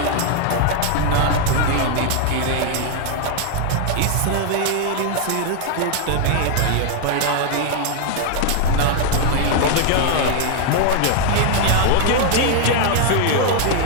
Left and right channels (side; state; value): both; different; correlation 0.00